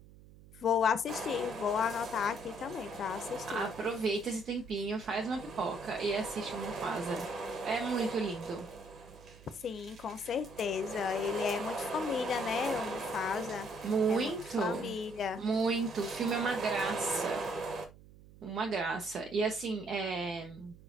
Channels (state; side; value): noise; right; hum, 21 dB below the sound